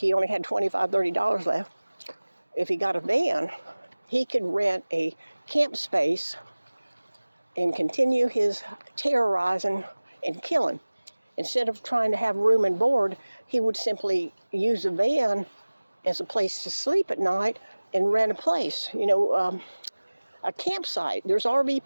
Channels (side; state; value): both; inverted; correlation -1.00